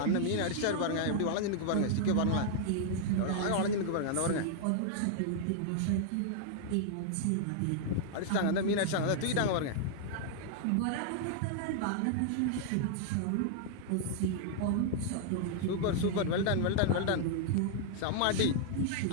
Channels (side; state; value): both; different; correlation -0.01